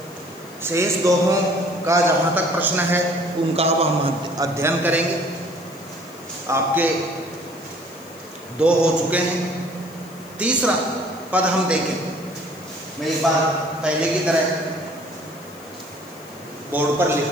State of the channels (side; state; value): left; noise; hiss, 23 dB below the sound